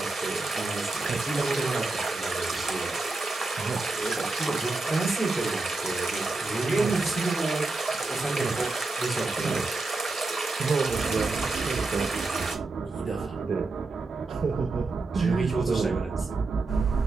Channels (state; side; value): quieter; left; 3.5 dB